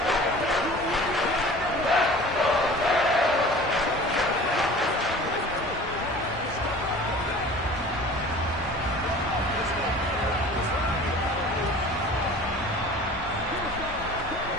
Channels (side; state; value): both; normal; correlation 0.43